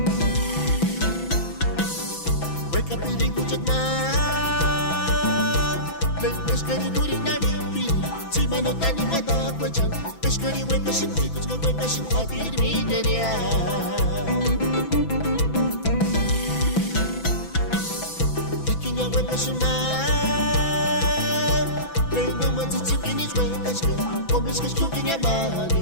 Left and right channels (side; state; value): right; late; 6.0 ms